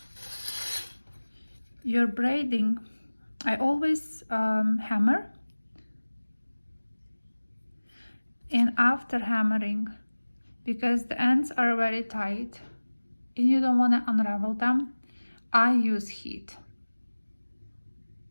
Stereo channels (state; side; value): inverted; both; correlation -1.00